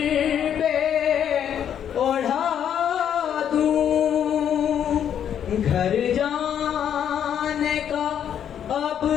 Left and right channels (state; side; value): quieter; right; 9.2 dB